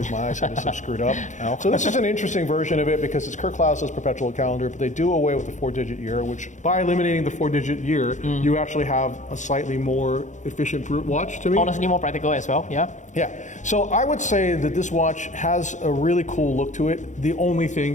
my eyesight is so screwed up. So this is an interesting version of it because it's Kurt Klaus's perpetual calendar, but they do away with the 4-digit year, which by eliminating the 4-digit year, you actually have a slightly more efficient watch to me. Honestly, more practical as well, yeah? Yeah, so I would say that this watch has a really cool look to it. The only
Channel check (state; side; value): late; right; 0.35 ms